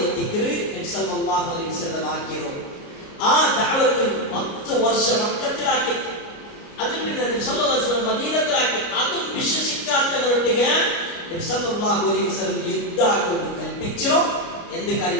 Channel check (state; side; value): late; right; 29 ms